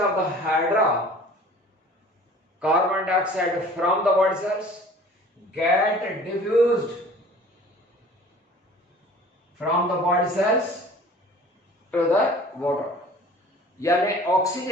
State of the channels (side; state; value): both; normal; correlation 0.47